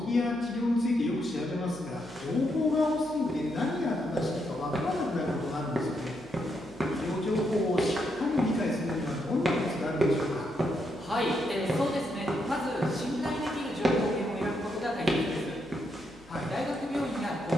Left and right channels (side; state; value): left; noise; hum, 25 dB below the sound